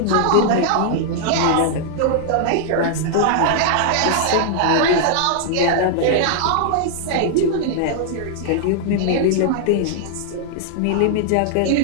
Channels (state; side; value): different; both; correlation -0.01